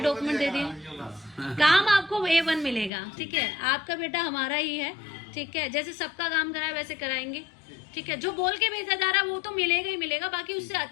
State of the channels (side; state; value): right; drops out; at 2.9 s